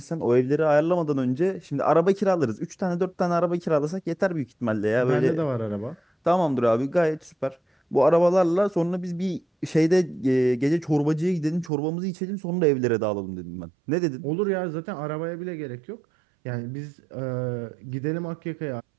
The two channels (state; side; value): drops out; left; at 11.7 s